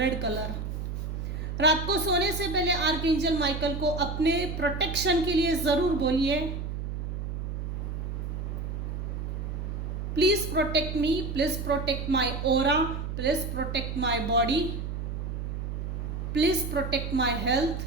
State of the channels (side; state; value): right; noise; hum, 4 dB below the sound